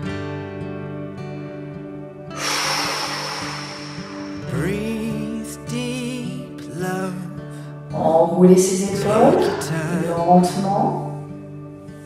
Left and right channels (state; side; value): identical; both; correlation 1.00